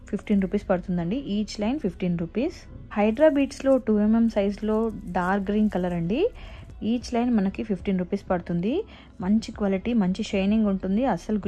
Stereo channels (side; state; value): both; identical; correlation 1.00